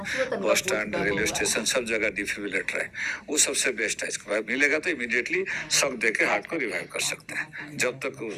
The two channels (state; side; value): identical; both; correlation 1.00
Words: bus stand, railway station, सब जगह डिफिब्रिलेटर है, वो सबसे बेस्ट है। इसके बाद मिलेगा तो इमीडिएटली शॉक देके हार्ट को रिवाइव कर सकते हैं। जब तक